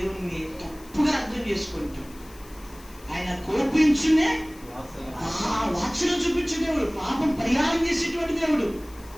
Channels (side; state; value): left; noise; hiss, 23 dB below the sound